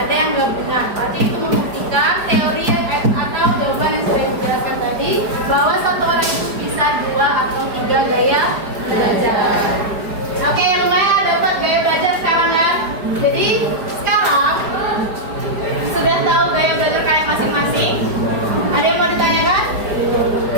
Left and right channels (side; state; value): left; late; 4.9 ms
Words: yang gabungan. Berarti itu membuktikan teori yang atau jawaban yang sudah dijelaskan tadi bahwa satu orang itu bisa 2 atau 3 gaya belajar. Oke, lumayan dapat gaya belajar sekarang ya. Jadi sekarang sudah tahu gaya belajar kalian masing-masing. Ada yang mau ditanyakan?